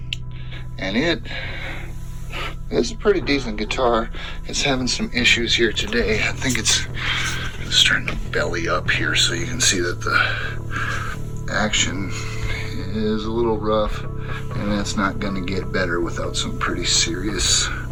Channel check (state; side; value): identical; both; correlation 1.00